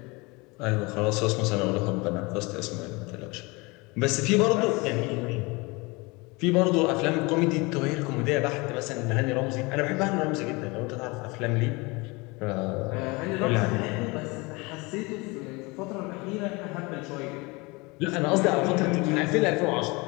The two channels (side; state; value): right; quieter; 25.7 dB